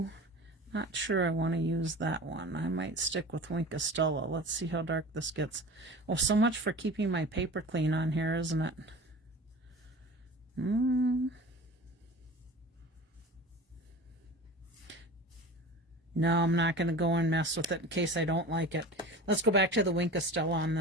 not sure I want to use that one. I might stick with Schudi-SHE. Let's see how dark this gets. Oh, so much for keeping my paper clean on here, isn't it? No, I'm not going to go and mess with it in case I don't like it. Let's go back to the Schudi-SHE on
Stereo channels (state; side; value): normal; both; correlation 0.36